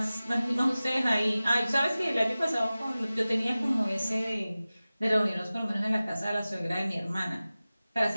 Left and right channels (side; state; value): both; inverted; correlation -0.97